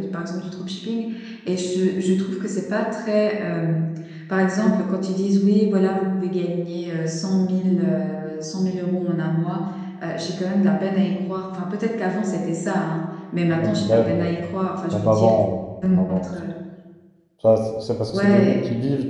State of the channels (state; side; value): identical; both; correlation 1.00